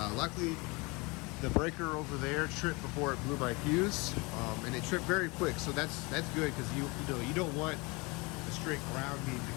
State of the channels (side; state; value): right; quieter; 26.6 dB